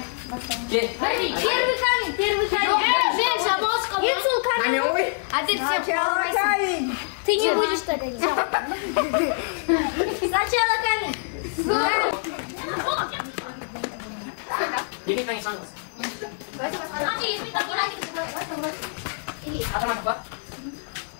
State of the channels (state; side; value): silent; right; digital silence